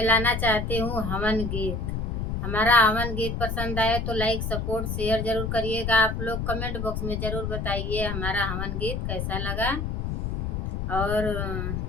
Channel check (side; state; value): left; noise; rumble, 2 dB below the sound